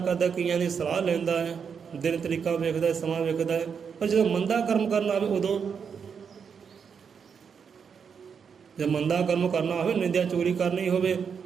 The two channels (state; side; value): quieter; left; 6.6 dB